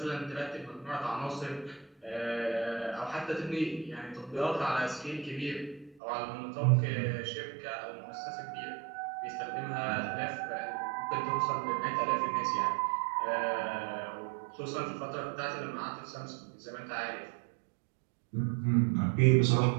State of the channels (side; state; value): left; drops out; at 6.0 s